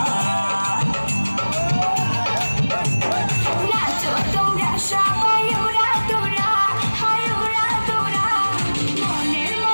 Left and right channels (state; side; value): inverted; both; correlation -1.00